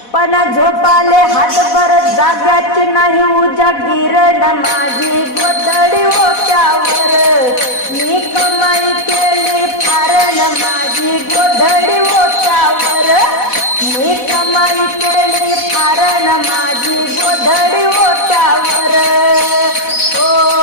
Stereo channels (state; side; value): late; right; 4.1 ms